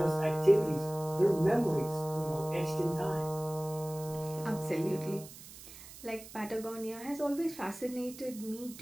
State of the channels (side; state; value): right; noise; hiss, 16 dB below the sound